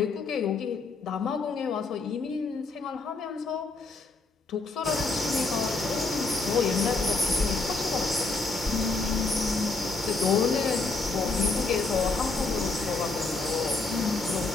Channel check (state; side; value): quieter; right; 3.7 dB